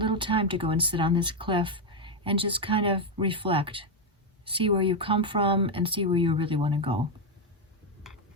time to go and sit on this cliff and just kind of reflect. See where you come from and see where you really want to go.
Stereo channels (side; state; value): both; normal; correlation 0.04